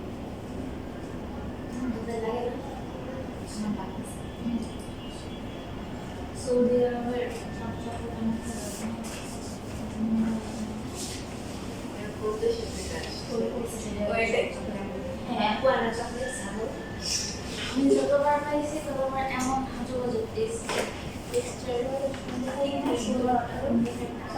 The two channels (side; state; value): both; identical; correlation 1.00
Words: লাগে না আমার লাগছে সৌদি আরবের সবচেয়ে করতে শিখতে চাই ওইটাই হ্যাঁ পুরানা চকলেট ছাড়ো আমি যতবার খাইছি ততবার এমন হাজু হাজু টেক্সচার